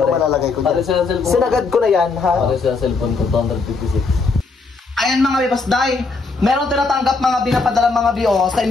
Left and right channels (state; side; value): quieter; right; 4.1 dB